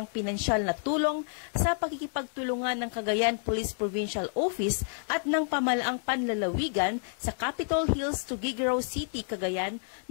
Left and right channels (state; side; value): silent; right; 58 dB below the other